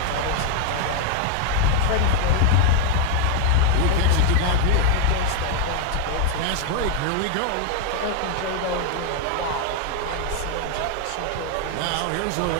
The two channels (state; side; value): different; both; correlation 0.01